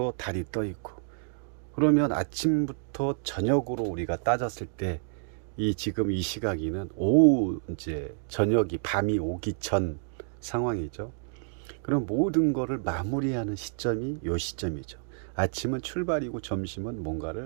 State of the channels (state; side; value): silent; left; digital silence